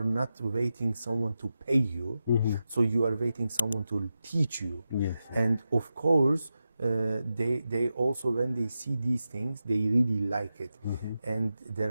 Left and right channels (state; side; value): inverted; both; correlation -0.90